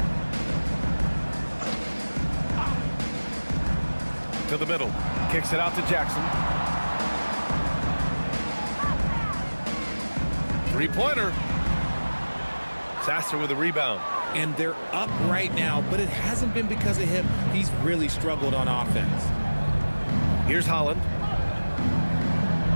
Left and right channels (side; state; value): both; inverted; correlation -1.00